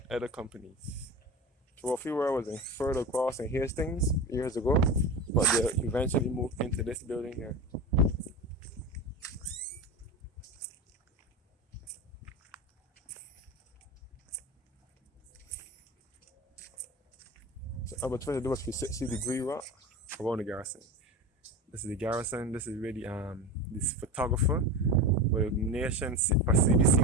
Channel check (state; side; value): normal; both; correlation 0.26